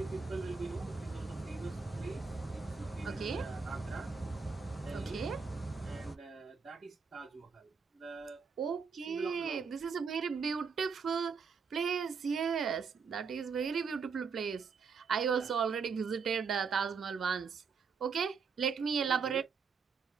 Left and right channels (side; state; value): left; quieter; 5.4 dB